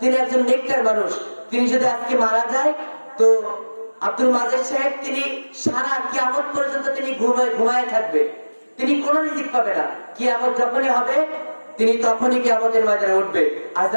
একজন নেককার মানুষ, তিনি যদি আজকে মারা যায় তো আব্দুল মাজেদ সাহেব তিনি সারা কিয়ামত পর্যন্ত তিনি ঘুমায় থাকবে, তিনি কোনো রিজিক পাবে না। কিয়ামত যখনই হবে তিনি তখনই কিয়ামতের ময়দানে উঠবে। আর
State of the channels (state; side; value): inverted; both; correlation -1.00